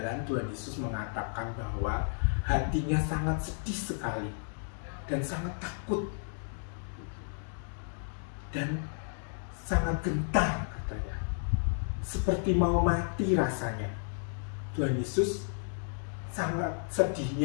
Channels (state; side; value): silent; right; digital silence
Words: Tuhan Yesus mengatakan bahwa hatinya sangat sedih sekali dan sangat takut dan sangat gentar katanya, seperti mau mati rasanya. Tuhan Yesus sangat